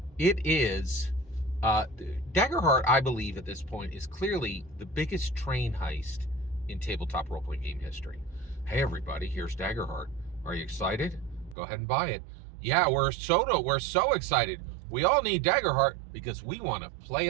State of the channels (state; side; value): drops out; left; at 11.6 s